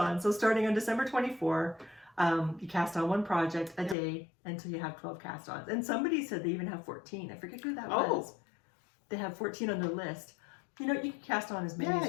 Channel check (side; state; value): right; drops out; at 4.0 s